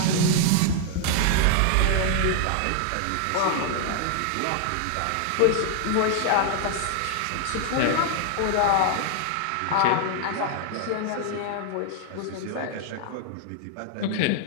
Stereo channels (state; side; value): different; both; correlation 0.00